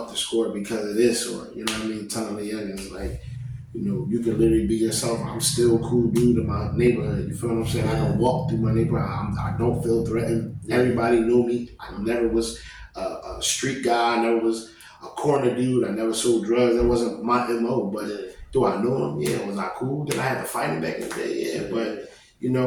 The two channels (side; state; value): both; identical; correlation 1.00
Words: the score because of this, or telling the youngins like, you can literally be yourself. I'm still a cool dude in my neighborhood. You feel what I'm saying? I can walk through my neighborhood. I don't feel threatened. Everybody knew me. I never was a street guy. I never was a corner dude. I never sold drugs. That wasn't my MO. But do I know him? Yeah. Was I cool? Did I have to fight him back in the day? Yeah. But